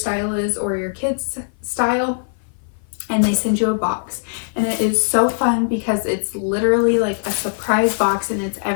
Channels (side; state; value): right; silent; 57 dB below the other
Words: is or your kid's style, and they send you a box. And it is so fun because it's literally like a surprise box and it's